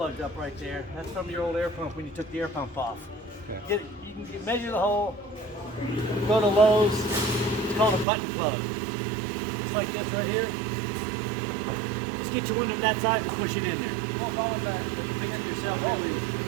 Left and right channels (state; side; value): drops out; left; at 8.1 s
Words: up right there. That's from your old air pump when you took the air pump off. Okay. You can measure the hole, go to Lowe's, it's called a button plug. Just like this right here. Just get your one of that size and push it in there. Fix it yourself over here.